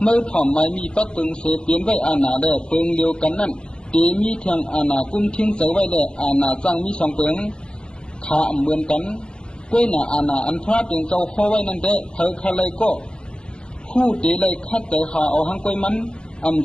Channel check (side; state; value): right; late; 0.052 ms